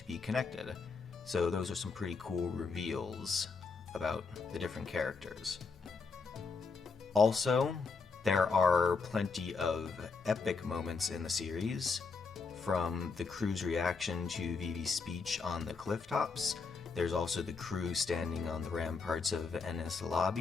be connected. So those are some pretty cool reveals about the different characters. Also, there are plenty of epic moments in the series, from the crew's reaction to Vivi's speech on the cliff tops. There's also the crew standing on the ramparts of Enies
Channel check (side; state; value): right; quieter; 4.7 dB